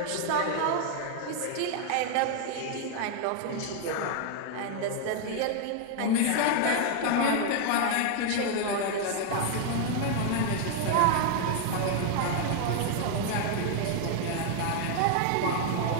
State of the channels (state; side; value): different; both; correlation 0.00